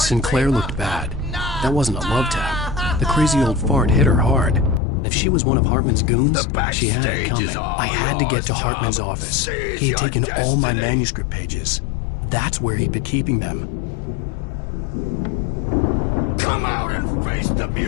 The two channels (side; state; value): right; drops out; at 4.8 s